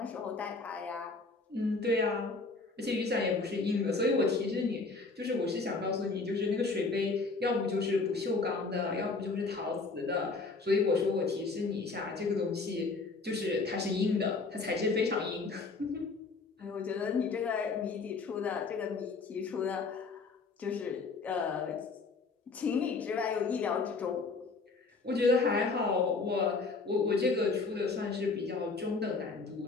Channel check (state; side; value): quieter; right; 4.0 dB